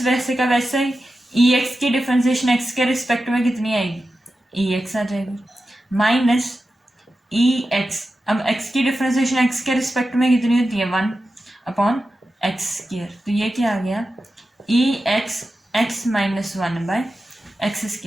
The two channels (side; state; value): both; normal; correlation 0.92